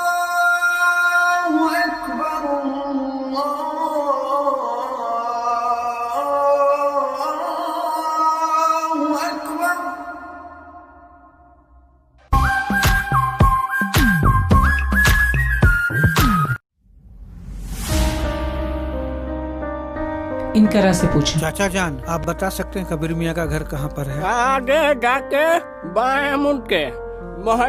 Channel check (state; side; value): identical; both; correlation 1.00